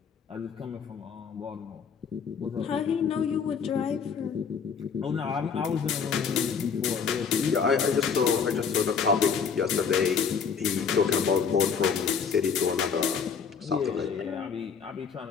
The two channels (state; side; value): quieter; right; 6.3 dB